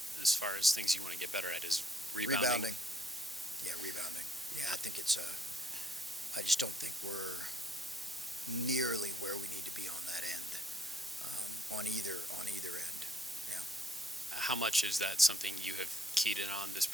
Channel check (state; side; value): normal; both; correlation 0.67